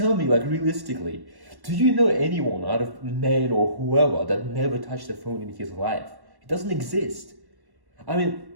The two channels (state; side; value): late; left; 1.1 ms